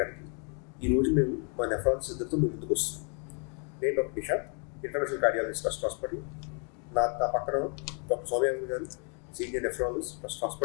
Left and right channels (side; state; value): right; quieter; 40.0 dB